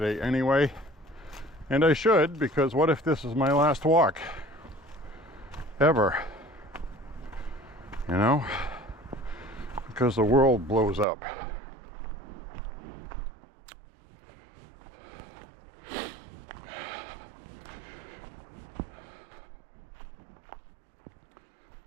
anyway. And I should, because what if this is my last walk? Ever. You know? Because the world blows up.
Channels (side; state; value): left; drops out; at 11.1 s